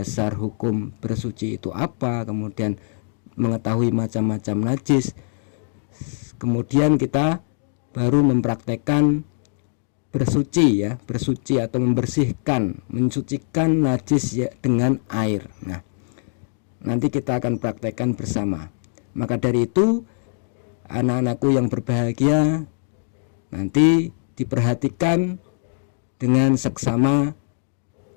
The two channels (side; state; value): right; silent; digital silence